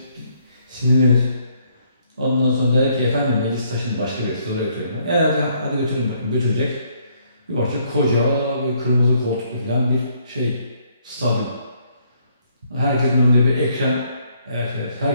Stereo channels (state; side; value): inverted; both; correlation -0.68